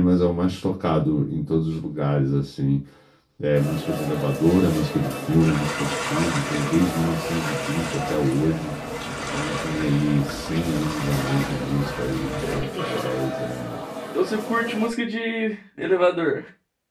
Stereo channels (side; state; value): both; identical; correlation 1.00